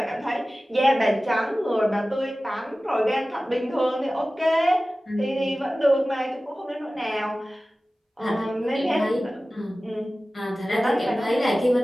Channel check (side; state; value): both; normal; correlation 0.96